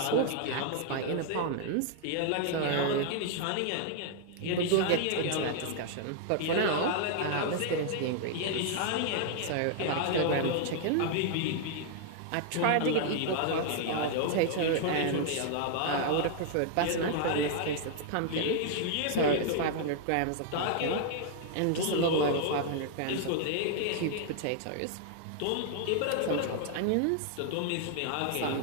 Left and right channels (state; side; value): different; both; correlation 0.00